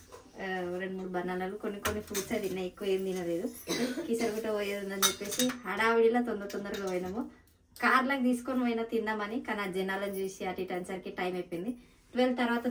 2-3 బనానాలు, కొన్ని ఫ్రూట్స్ తిన్నా, ఎక్కువ ఏం తినలేదు. కిసరుగుట పోయేది ఉందని చెప్పేసి హడావిడిలో తొందరగా పోయినాము. కార్లకు తీసుకొని పోయినా తిందామని, కానీ ఆ జనాలను చూసి అటు ఇటు అనేసరికి టైం అయిపోయింది. 12 తర్వాత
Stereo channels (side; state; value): both; identical; correlation 1.00